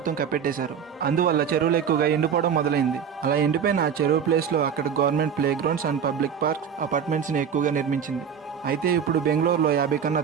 కప్పెట్టేశారు. అందువల్ల చెరువులు ఎక్కువగా ఎండిపోవడం మొదలైంది. అలా ఎండిపోయిన ఆ చెరువు ప్లేస్ లో అక్కడ government play grounds and public parks apartments ని ఎక్కువగా నిర్మించింది. అయితే ఇప్పుడు బెంగళూరులో 50 కన్నా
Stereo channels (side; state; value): left; quieter; 7.5 dB